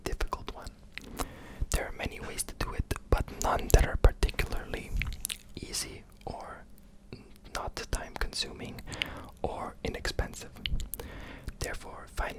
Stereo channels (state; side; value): identical; both; correlation 1.00